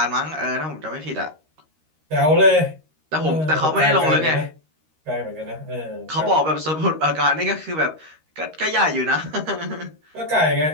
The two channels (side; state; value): left; late; 13 ms